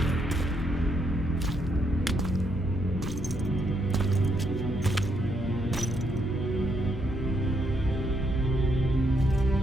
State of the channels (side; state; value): both; normal; correlation 0.76